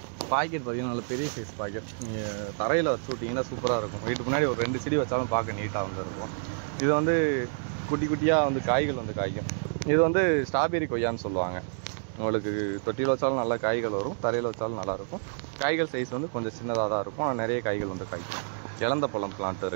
பாக்கெட் பார்த்தீங்கன்னா நல்ல பெரிய சைஸ் பாக்கெட். நீங்கள் தரையில் வச்சு விட்டிங்கன்னா சூப்பராக இருக்கும். வீட்டுக்கு முன்னாடி ஒரு 2 செடி வச்சாலும் பார்க்க நீட்டாக வந்துருக்கும். இது வந்து குட்டி குட்டியாக வந்து காய்கள் வந்து காய்க்கும். இது வந்து ஸ்ட்ராபெரி கொய்யான்னு சொல்லுவாங்க. உங்களுக்கு தொட்டியில் வச்சாலும் நல்லா காய்கள் வரும், தரையில் வச்சாலும் நல்லாயிருக்கும். காய்கள் சைஸ் வந்து கொஞ்சம் சின்னதாக தான் இருக்கும், ஆனால் நிறைய காய்கள் வந்து காய்க்கும். இலந்த பழம் பிளான்ட்டு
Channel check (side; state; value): left; silent; digital silence